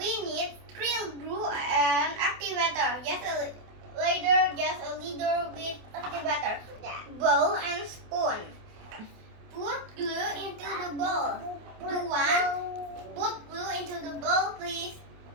need krill glue and activator. Just a little bit activator. Bowl and spoon. Put glue into the bowl. Put glue into the bowl, please.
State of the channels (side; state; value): left; late; 28 ms